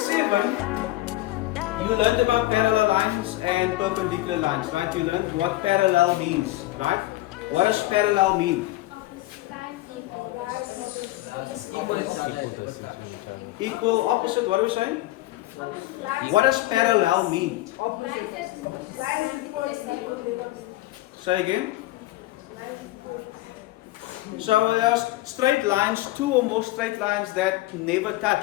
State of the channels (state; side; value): quieter; right; 17.6 dB